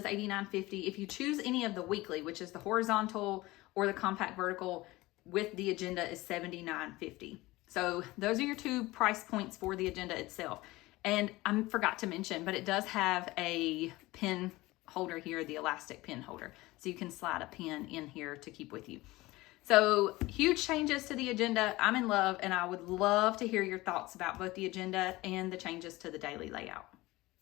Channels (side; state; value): right; quieter; 19.8 dB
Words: $89.50. If you choose any of the weekly, which is the horizontal or the compact vertical with the agenda, is $79.50. So those are your two price points for the agenda itself. And I forgot to mention, but it does have a pen holder here, the elastic pen holder. So you can slide a pen in here to keep with you. So huge changes to the agenda. I'm in love, and I would love to hear your thoughts about both the agenda and the changes to the daily layout.